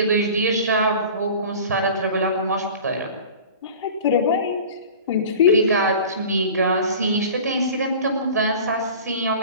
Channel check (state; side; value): inverted; both; correlation -0.39